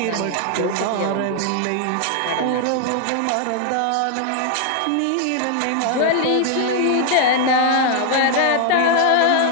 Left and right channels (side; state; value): both; different; correlation 0.00